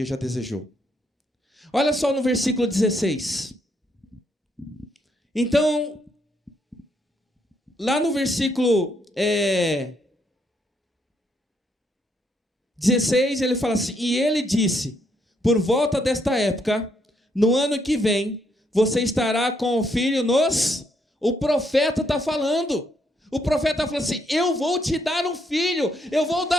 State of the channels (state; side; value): normal; both; correlation 0.74